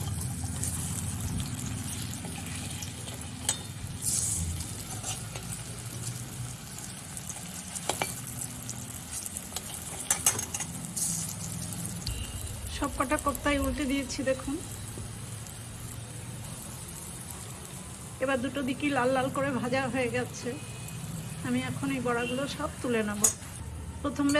সব কটা কোপ্তাই উল্টে দিয়েছি দেখুন। এবার দুটো দিকই লাল লাল করে ভাজা হয়ে গেছে। আমি এখন এই বড়াগুলো সব তুলে নেব। প্রথম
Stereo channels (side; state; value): both; identical; correlation 1.00